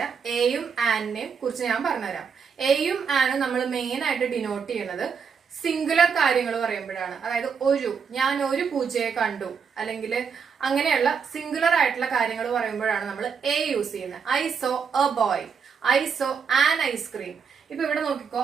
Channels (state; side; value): quieter; left; 6.2 dB